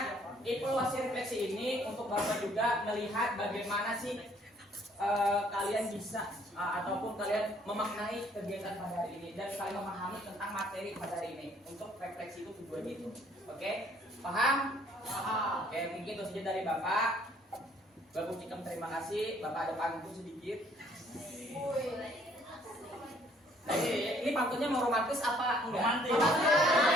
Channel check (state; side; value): normal; both; correlation 0.62